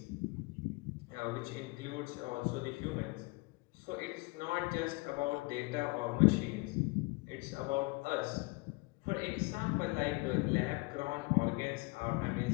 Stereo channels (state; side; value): quieter; right; 26.0 dB